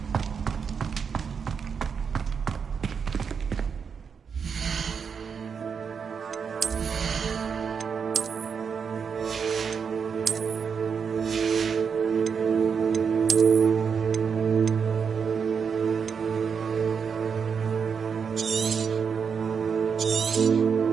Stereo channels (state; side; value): quieter; left; 6.4 dB